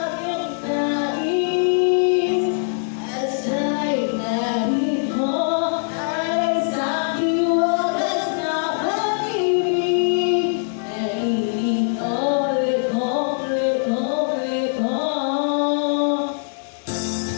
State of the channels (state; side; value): silent; right; digital silence